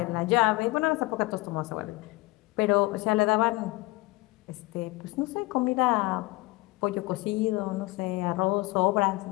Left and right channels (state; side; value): quieter; right; 22.1 dB